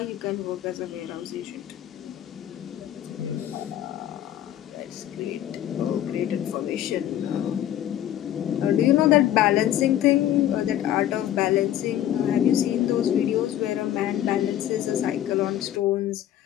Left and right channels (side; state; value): right; quieter; 11.8 dB